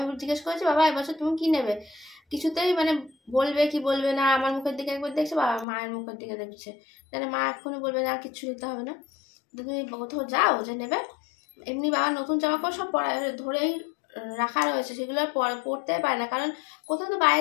জিজ্ঞেস করেছি বাবা এবছর তুমি কি নেবে, কিছুতেই মানে বলবে কি বলবে না। আমার মুখের দিকে একবার দেখছে, বাবা মায়ের মুখের দিকে দেখছে, তাহলে মা এক্ষুনি বলবে না কিছু নিতে হবে না, তুমি কোথাও যাও যে নেবে। এমনি বাবা নতুন জামা কাপড় সব ধরেই রাখা রয়েছে, সেগুলো পরতে পারে না, কারণ কোথাও তো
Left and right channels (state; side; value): drops out; right; at 5.7 s